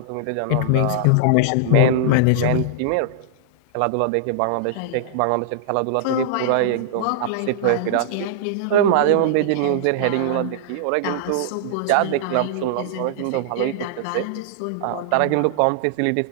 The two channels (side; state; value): both; different; correlation -0.01